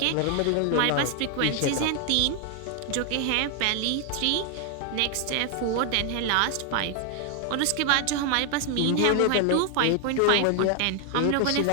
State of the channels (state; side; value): different; both; correlation 0.00